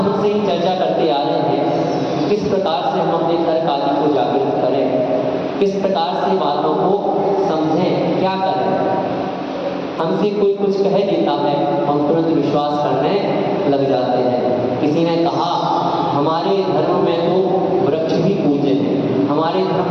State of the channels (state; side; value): identical; both; correlation 1.00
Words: से ही चर्चा करते आ रहे हैं, किस प्रकार से हम अपने तर्क आदि को जागृत करें। किस प्रकार से बातों को समझें, क्या करें। हमसे कोई कुछ कह देता है, हम तुरंत विश्वास करने लग जाते हैं। किसी ने कहा हमारे धर्म में तो वृक्ष भी पूज्य है, हमारे